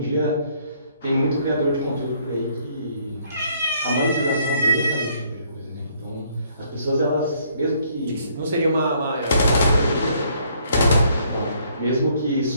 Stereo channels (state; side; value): inverted; both; correlation -0.66